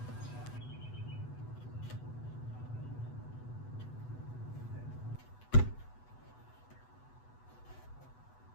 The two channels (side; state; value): right; late; 8.1 ms